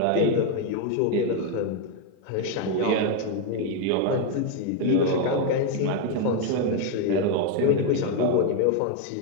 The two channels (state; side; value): different; both; correlation 0.02